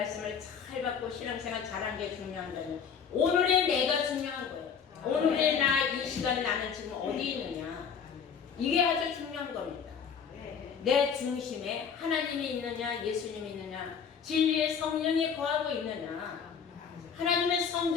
잘 받고 신앙생활 잘한 게 중요한 게 아니고 오늘의 내가 중요한 거예요. 오늘의 나, 이 시간 나는 지금 어디 있느냐, 이게 아주 중요한 겁니다. 내 중심에 하나님이 있느냐, 예수님이 있느냐, 진리의 성령이 거하고 있느냐. 하나님의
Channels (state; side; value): quieter; right; 6.8 dB